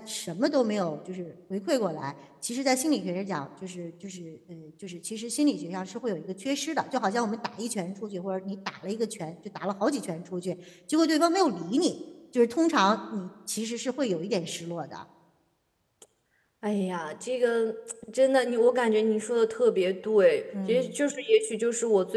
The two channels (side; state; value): both; identical; correlation 1.00